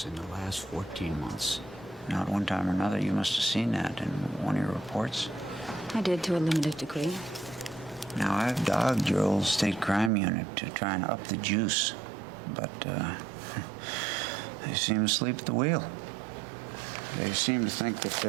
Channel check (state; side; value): drops out; left; at 10.1 s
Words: in the last 14 months. Not one time or another, you must have seen that in one of your reports. I did to a limited degree. Now, I've dogged your old state crime unit to try and up the juice, but they seem to sleep at the wheel. They seem to think that